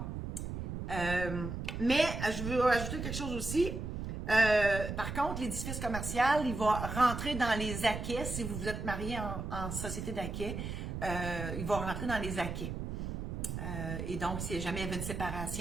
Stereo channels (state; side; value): noise; right; rumble, 5 dB below the sound